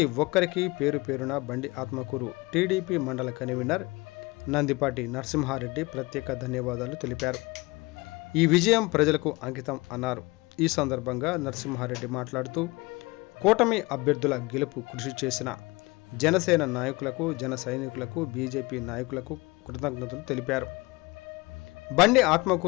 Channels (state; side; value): quieter; right; 23.8 dB